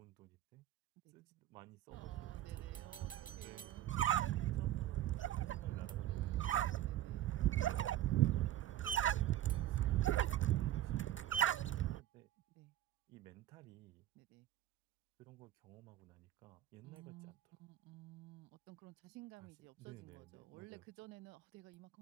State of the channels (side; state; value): left; quieter; 12.7 dB